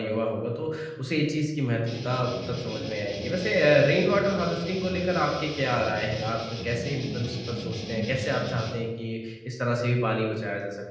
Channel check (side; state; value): both; identical; correlation 1.00